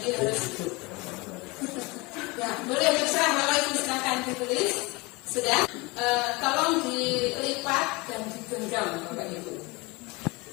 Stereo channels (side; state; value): right; quieter; 25.2 dB